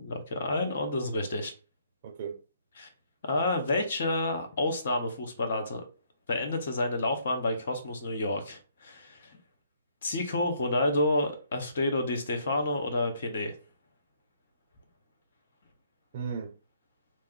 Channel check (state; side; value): inverted; both; correlation -0.67